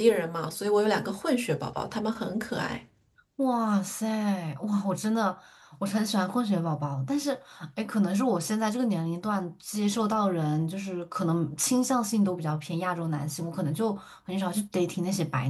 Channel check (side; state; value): both; identical; correlation 1.00